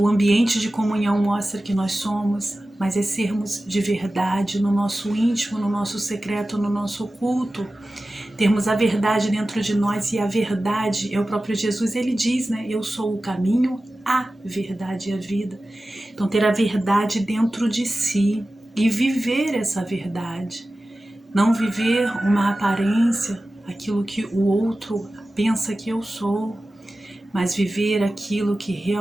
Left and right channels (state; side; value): normal; both; correlation 0.95